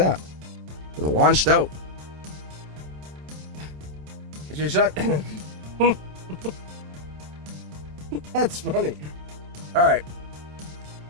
It launched out. It's your shot. That's funny. All right.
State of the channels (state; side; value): late; left; 27 ms